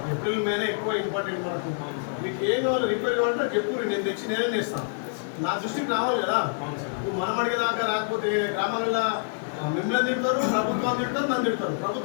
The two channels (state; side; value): silent; right; 60 dB below the other